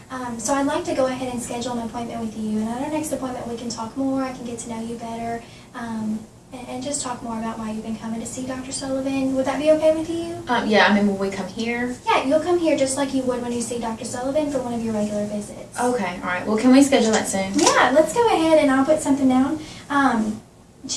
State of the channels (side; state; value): both; identical; correlation 1.00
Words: So I'd like to go ahead and schedule an appointment with you, and at our next appointment we can talk more, I can get to know you better, and just talk more about why you've been coming to see Dr. Sullivan. Would that be okay with you? Yeah, I mean, will we come here? Yeah, you'll come here just like you would when you see Dr. Sullivan for one of your regular visits. Okay, alright. Well, can we schedule that soon? Yeah, let's go ahead and I'll put something down.